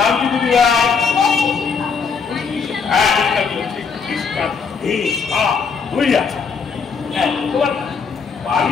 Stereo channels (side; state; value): right; quieter; 5.5 dB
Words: কি দিদি ভাই? হ্যাঁ তোমার